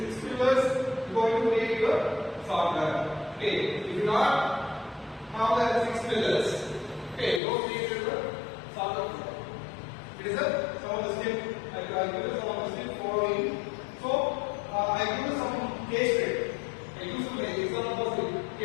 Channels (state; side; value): drops out; right; at 7.4 s